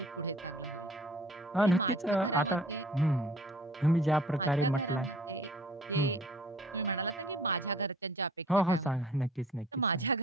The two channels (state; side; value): normal; both; correlation 0.51